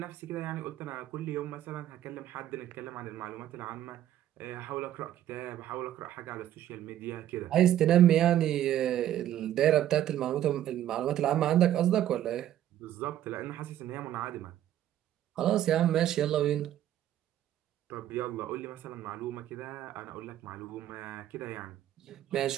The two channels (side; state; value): left; quieter; 12.0 dB